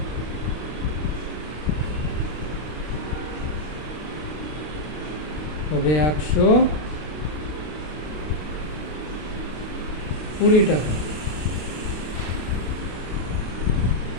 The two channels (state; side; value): late; right; 32 ms